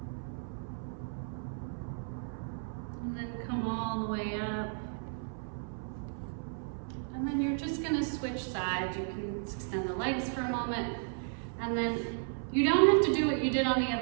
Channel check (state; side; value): silent; left; 55 dB below the other